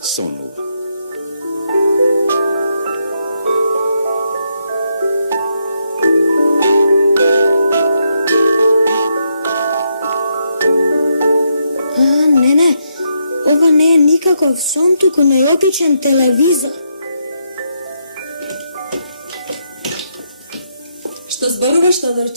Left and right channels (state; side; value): inverted; both; correlation -0.79